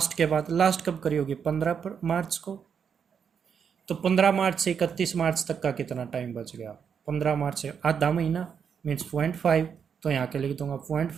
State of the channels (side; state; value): left; quieter; 7.1 dB